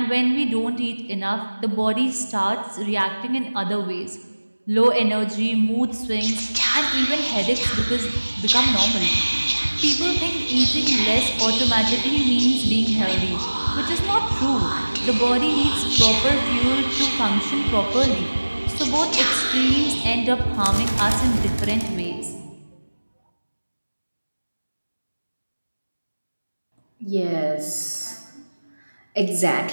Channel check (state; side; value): inverted; both; correlation -1.00